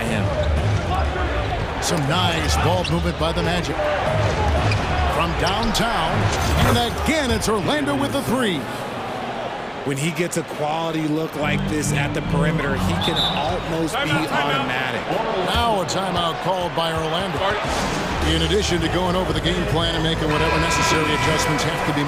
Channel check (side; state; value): both; identical; correlation 1.00